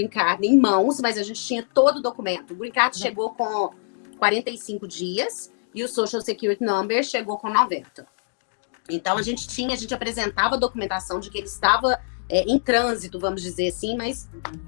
Card em mãos, mas a gente tinha todo o documento. O Green Card chegou com 45 dias e o Social Security Number chegou com 90. Então, a gente apresentava a documentação de que ele estava em trânsito, vamos dizer assim, mas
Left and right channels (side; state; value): right; silent; digital silence